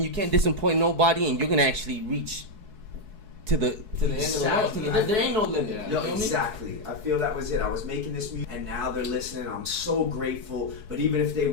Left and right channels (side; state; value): left; late; 4.7 ms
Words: you can't disappoint nobody, and you're gonna actually reach to the end of the world. Exactly. There ain't no limit. Yeah. You Yo, feel me? exactly. I feel that was it. I was making this music, and now they're listening. I'm so grateful. But even if they